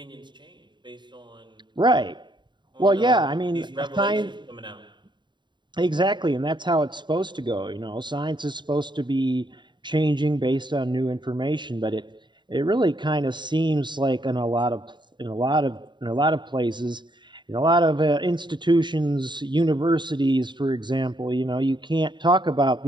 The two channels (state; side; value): late; left; 0.22 ms